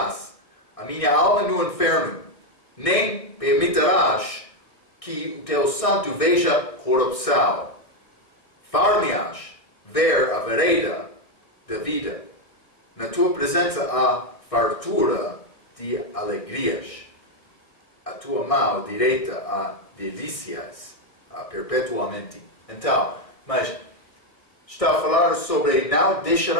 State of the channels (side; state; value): right; late; 1.6 ms